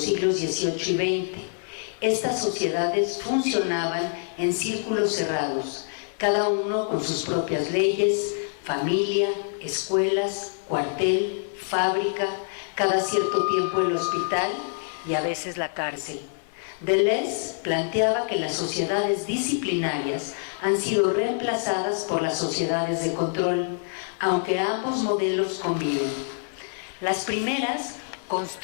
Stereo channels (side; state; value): right; silent; 61 dB below the other